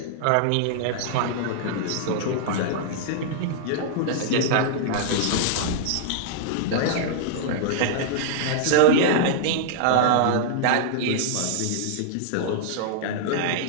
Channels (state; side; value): different; both; correlation -0.01